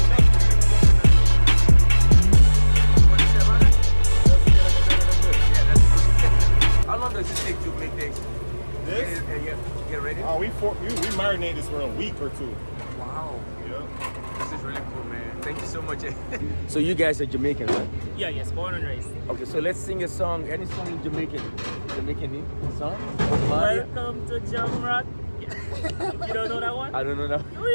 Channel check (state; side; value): inverted; both; correlation -1.00